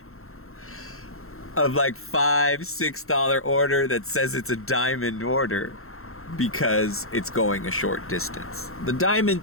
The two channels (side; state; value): right; late; 0.62 ms